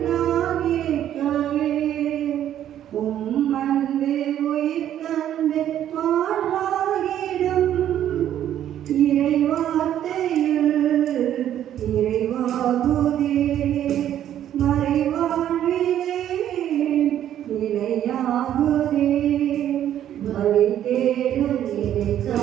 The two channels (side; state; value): left; quieter; 11.0 dB